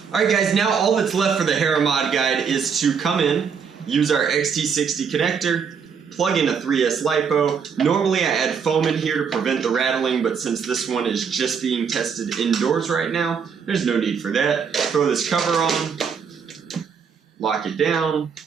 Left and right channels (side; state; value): left; quieter; 6.4 dB